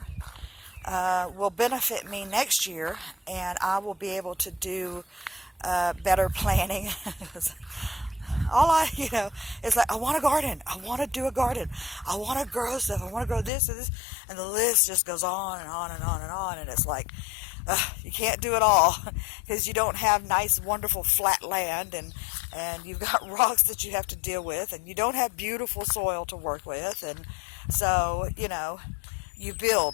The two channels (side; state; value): right; drops out; at 13.5 s